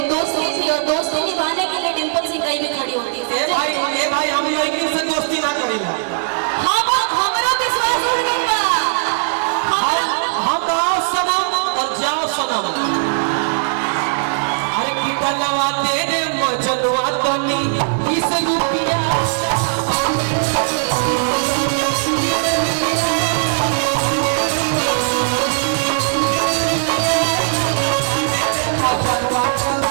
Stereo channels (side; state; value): left; silent; digital silence